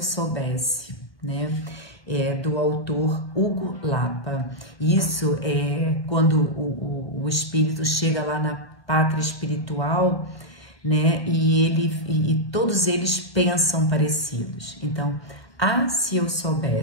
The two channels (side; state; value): right; late; 1.2 ms